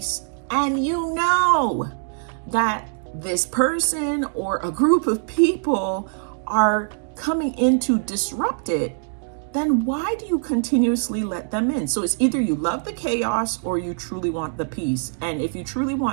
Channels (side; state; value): left; silent; digital silence